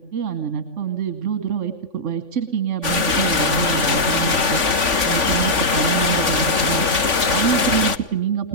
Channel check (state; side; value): late; left; 3.5 ms